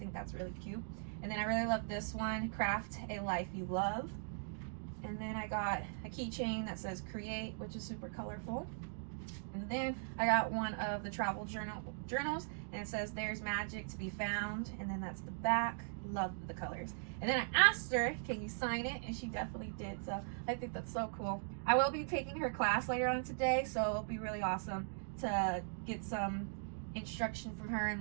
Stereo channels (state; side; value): silent; left; digital silence